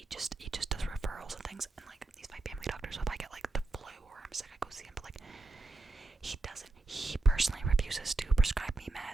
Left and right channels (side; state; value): left; quieter; 3.1 dB